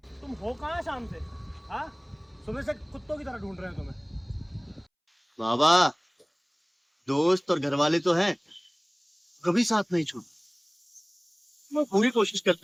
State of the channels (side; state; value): both; identical; correlation 1.00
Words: तुम हो कहाँ शाम से? हाँ, सुबह से कुत्तों की तरह ढूंढ रहे हैं तुम्हें। बाबा, दोस्त और घरवाले तो हैं, कभी साथ नहीं छोड़। मैं पूरी कोशिश